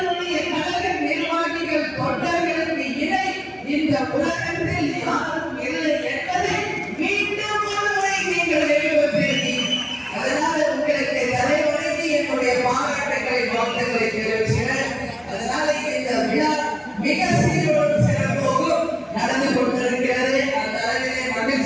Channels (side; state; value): both; identical; correlation 1.00